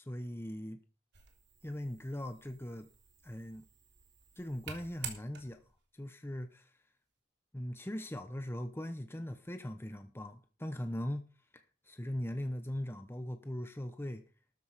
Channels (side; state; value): both; normal; correlation 0.92